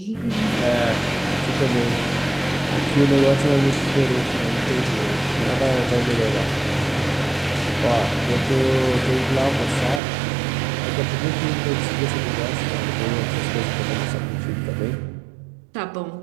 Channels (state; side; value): drops out; left; at 10.0 s